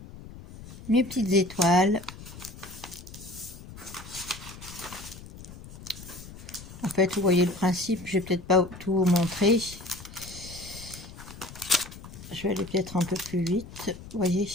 Mes petites étoiles. En fait, vous voyez le principe, je vais peut-être pas tout vous montrer. Je vais aller peut-être un peu plus vite, vous voyez.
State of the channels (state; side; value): noise; left; rumble, 15 dB below the sound